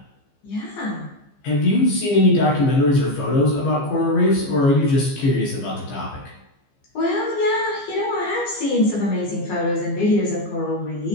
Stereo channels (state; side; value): late; right; 15 ms